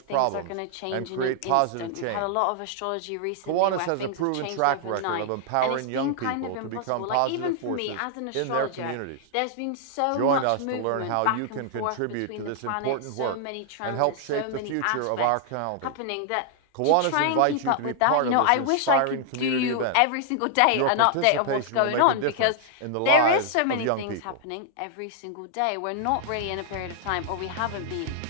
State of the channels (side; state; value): both; different; correlation 0.00